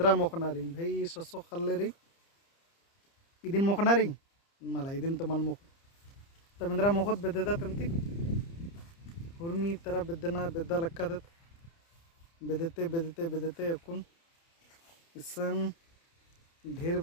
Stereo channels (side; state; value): right; late; 30 ms